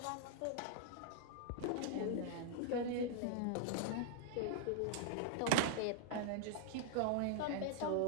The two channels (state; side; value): different; both; correlation -0.01